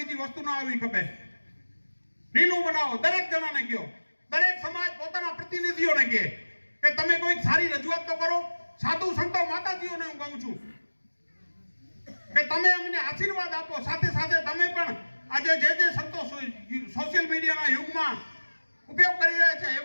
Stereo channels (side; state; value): both; inverted; correlation -1.00